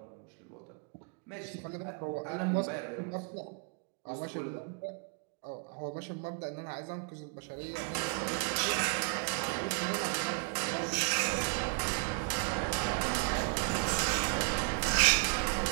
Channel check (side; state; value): left; quieter; 31.4 dB